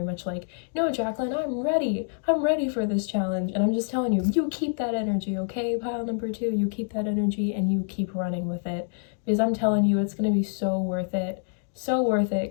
much like, no, Jacqueline, I'm ready. I'm ready for this challenge. And I'm just telling you, you keep that energy, okay? Pile number 2, you keep that energy and you keep running with it. Because I'm telling you, it's going to be so worth it. So worth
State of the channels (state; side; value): silent; right; digital silence